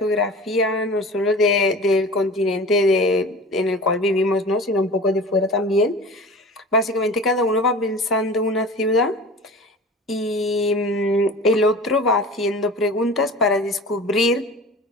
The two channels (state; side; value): normal; both; correlation 0.37